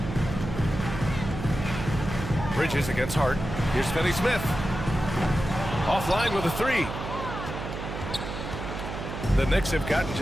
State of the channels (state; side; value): noise; right; hum, 7 dB below the sound